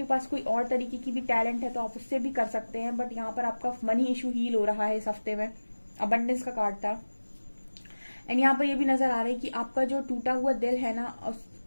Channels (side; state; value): both; inverted; correlation -1.00